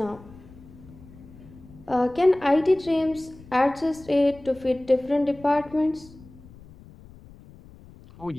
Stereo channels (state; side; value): noise; left; rumble, 21 dB below the sound